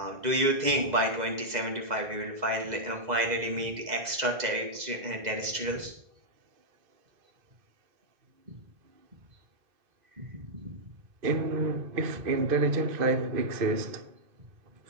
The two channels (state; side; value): late; left; 2.0 ms